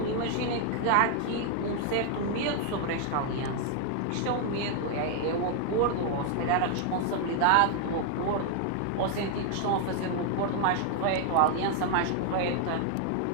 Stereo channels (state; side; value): different; both; correlation 0.00